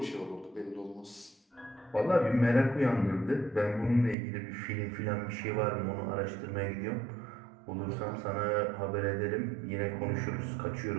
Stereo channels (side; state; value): left; drops out; at 4.2 s